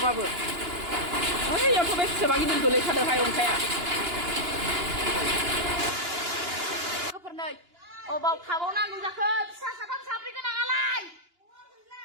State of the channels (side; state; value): left; late; 2.9 ms